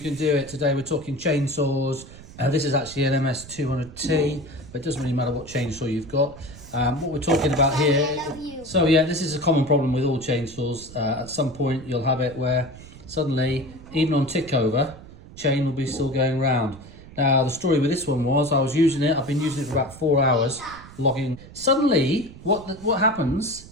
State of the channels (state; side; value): noise; right; rumble, 18 dB below the sound